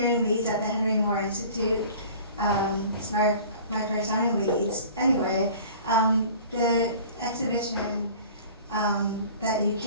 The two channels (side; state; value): both; inverted; correlation -0.44